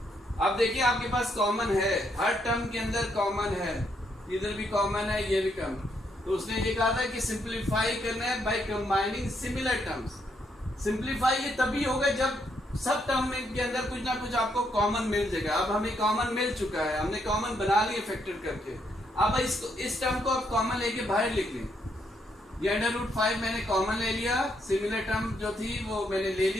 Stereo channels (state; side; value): normal; both; correlation 0.75